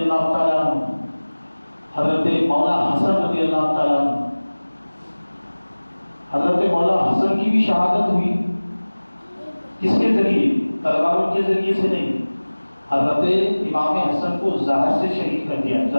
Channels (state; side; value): inverted; both; correlation -1.00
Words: تعالیٰ عنہ، حضرت مولا حسن رضی اللہ تعالیٰ عنہ، حضرت مولا حسن کی بھی شہادت ہوئی۔ کس کے ذریعے؟ تلواروں کے ذریعے سے نہیں، حضرت امام حسن کو زہر سے شہید کر دیا،